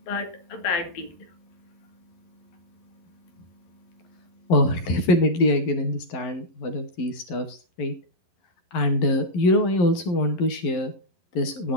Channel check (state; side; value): late; right; 11 ms